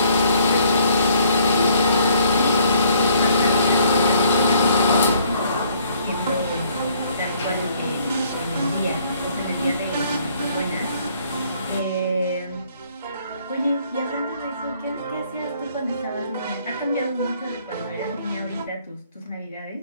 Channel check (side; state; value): both; inverted; correlation -0.63